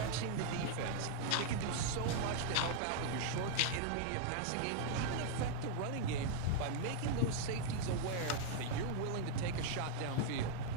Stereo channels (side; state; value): both; different; correlation -0.01